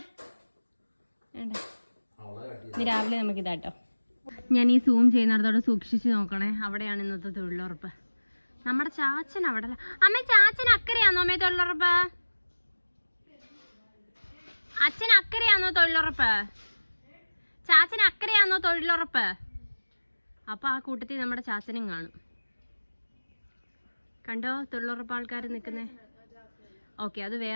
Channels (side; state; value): both; inverted; correlation -1.00